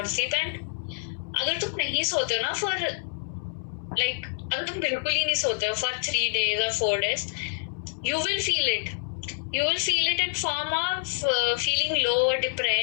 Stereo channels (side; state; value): right; silent; 60 dB below the other